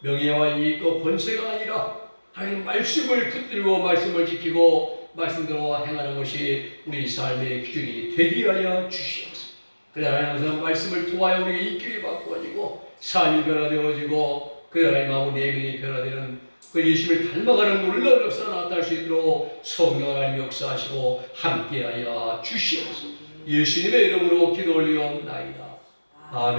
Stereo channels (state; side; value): inverted; both; correlation -1.00